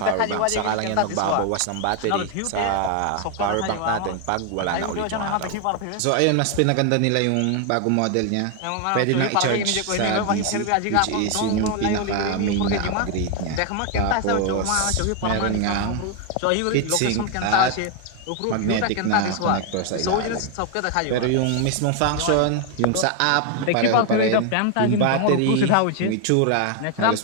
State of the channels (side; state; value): both; different; correlation 0.01